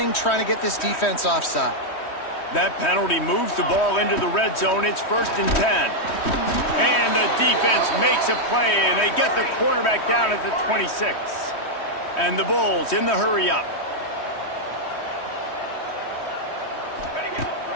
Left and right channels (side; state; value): right; late; 3.1 ms